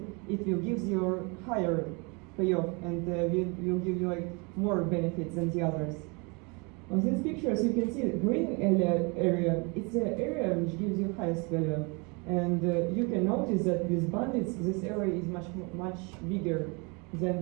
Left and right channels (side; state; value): left; quieter; 30.6 dB